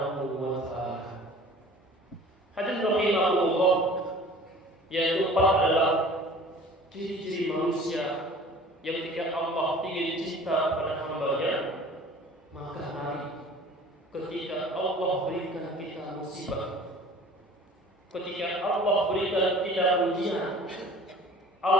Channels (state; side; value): normal; both; correlation 0.46